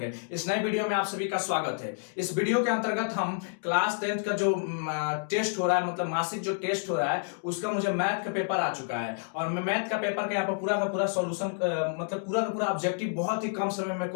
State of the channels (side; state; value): right; silent; digital silence